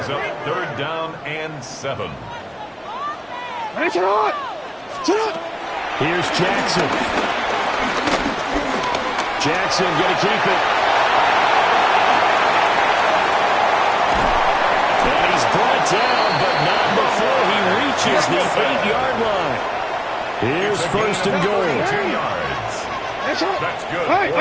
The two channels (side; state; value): both; identical; correlation 1.00